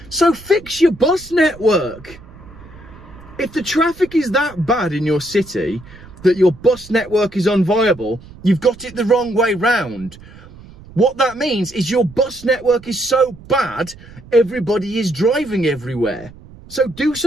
So fix your bus network. If the traffic is that bad in your city that your bus network is unviable, you've got it the wrong way round. What that means is your bus network is so bad, everybody is driving everywhere. So do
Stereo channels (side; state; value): right; noise; rumble, 20 dB below the sound